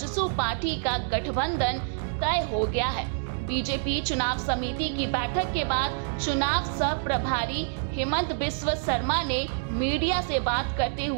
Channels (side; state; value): left; silent; digital silence